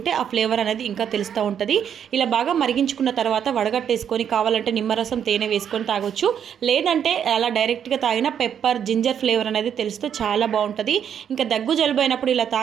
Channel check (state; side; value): quieter; left; 8.6 dB